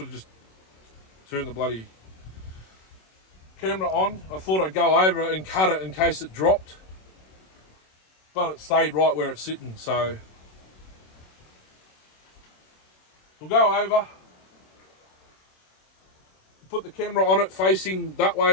have just turned the bloody camera on. I thought I'd go over it and cut it in case it dropped, but it stayed right where it's sitting. So we'll go over, put the camera on it facing that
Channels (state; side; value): late; right; 26 ms